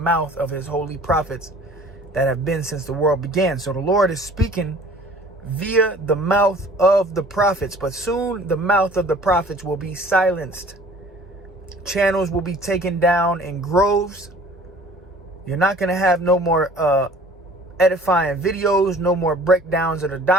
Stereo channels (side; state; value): both; normal; correlation 0.49